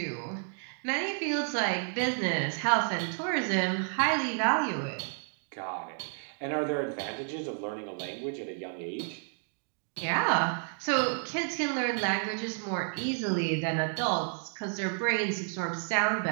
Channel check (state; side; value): silent; left; 57 dB below the other